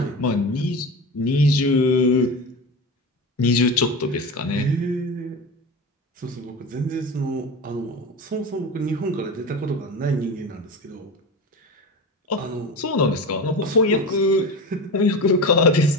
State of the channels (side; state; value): both; normal; correlation 0.26